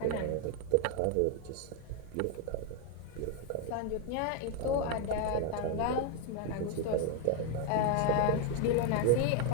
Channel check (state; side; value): different; both; correlation 0.01